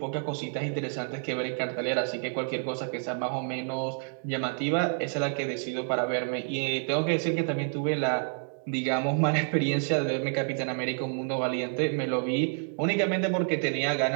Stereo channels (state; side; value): silent; left; 59 dB below the other